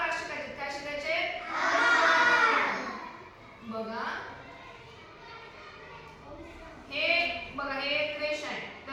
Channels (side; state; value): both; identical; correlation 1.00